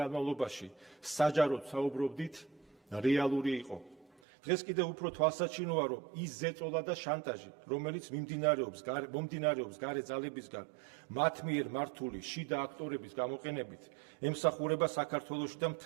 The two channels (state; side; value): drops out; left; at 4.1 s